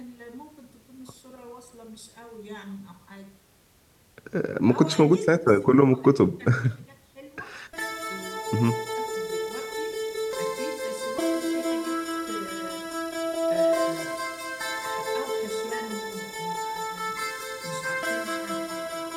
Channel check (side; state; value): both; identical; correlation 1.00